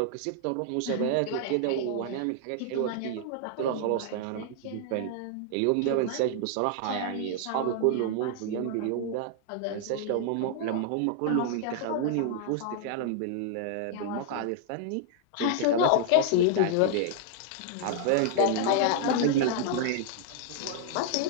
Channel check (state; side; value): different; both; correlation 0.00